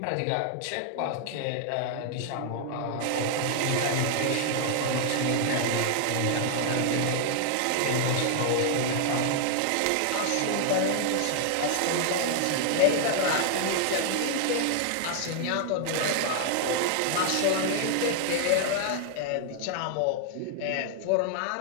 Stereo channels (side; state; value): both; different; correlation 0.00